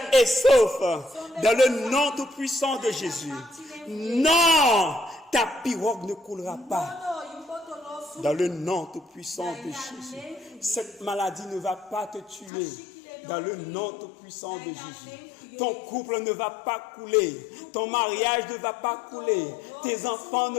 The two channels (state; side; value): drops out; right; at 12.5 s